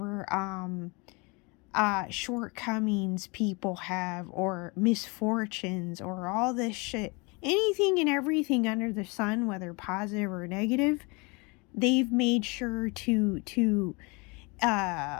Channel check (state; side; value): quieter; right; 28.7 dB